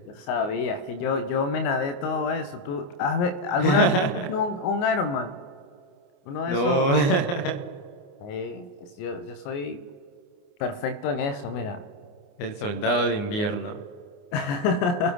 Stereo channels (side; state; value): right; late; 28 ms